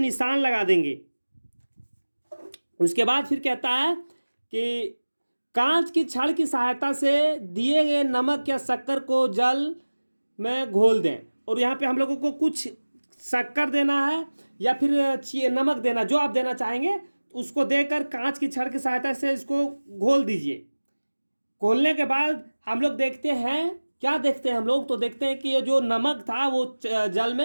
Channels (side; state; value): both; inverted; correlation -1.00